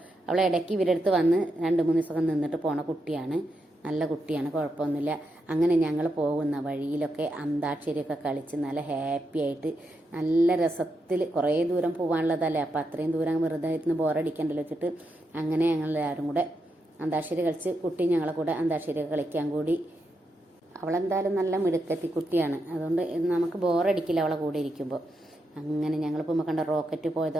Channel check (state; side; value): normal; both; correlation 0.84